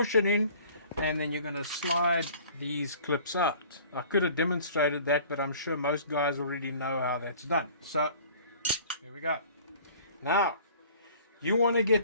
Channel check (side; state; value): both; inverted; correlation -0.49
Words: it in and then you're going to slide these clips out. I could have demonstrated that, but I'm sure most guys already know how that's done. So, here we go. Now, you want to